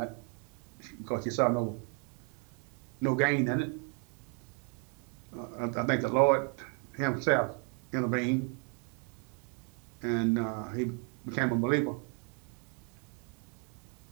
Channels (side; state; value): left; quieter; 33.5 dB